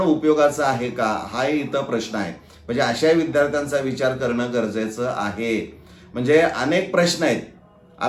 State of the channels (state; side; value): identical; both; correlation 1.00